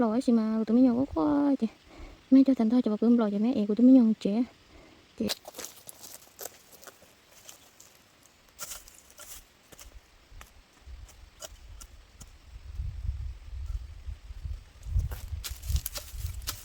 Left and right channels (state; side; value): identical; both; correlation 1.00